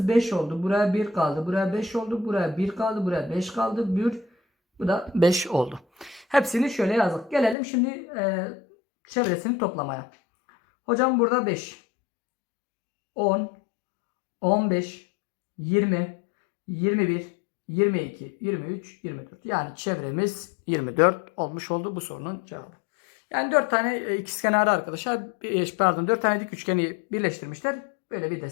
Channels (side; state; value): right; drops out; at 7.6 s